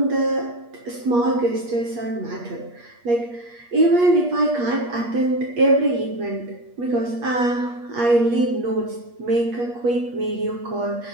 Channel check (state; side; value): late; left; 8.4 ms